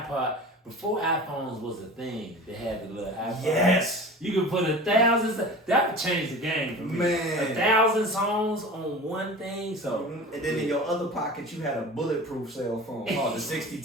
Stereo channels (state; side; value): normal; both; correlation 0.36